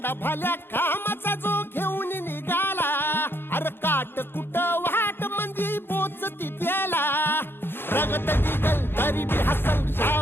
भल्या कामाचा जो घेऊन निघाला, अरे काट कुट वाट म्हणजे पोचती त्याला, रगत निघल तरी बी हसल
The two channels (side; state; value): right; late; 0.10 ms